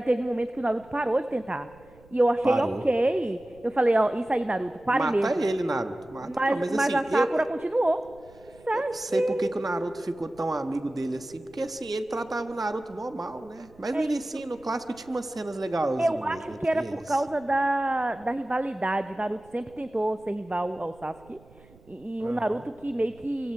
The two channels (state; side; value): noise; right; rumble, 26 dB below the sound